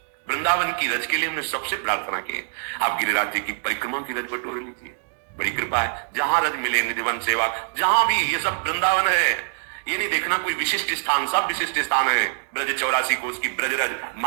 वृंदावन की रज के लिए हमने सबसे प्रार्थना की है, आप गिरिराज जी की परिक्रमा की रज बटोर लीजिए, बड़ी कृपा है। जहां रज मिले निधिवन सेवा, जहां भी, ये सब वृंदावन है, ये नहीं देखना कोई विशिष्ट स्थान, सब विशिष्ट स्थान है। ब्रज 84 कोस की ब्रज रज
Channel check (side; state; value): left; silent; digital silence